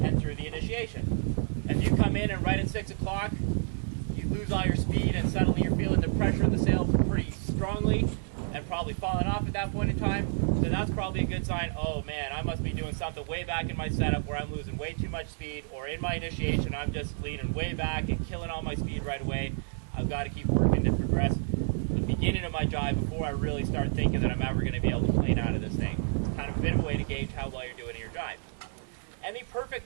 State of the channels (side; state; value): left; silent; digital silence